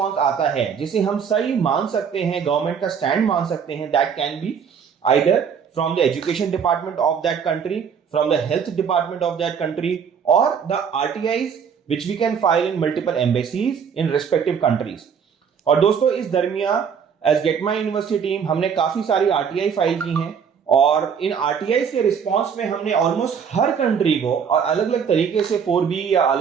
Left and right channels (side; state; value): left; quieter; 7.0 dB